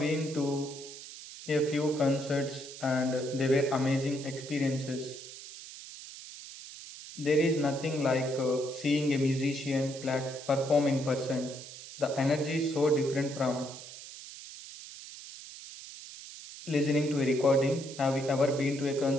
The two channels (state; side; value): noise; right; hiss, 14 dB below the sound